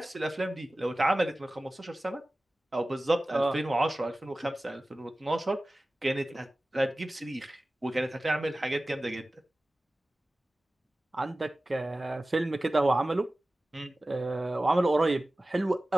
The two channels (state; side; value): normal; both; correlation 0.97